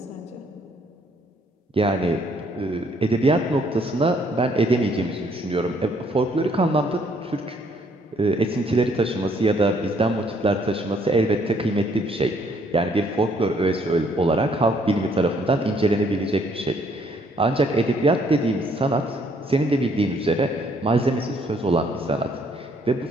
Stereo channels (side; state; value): both; normal; correlation 0.66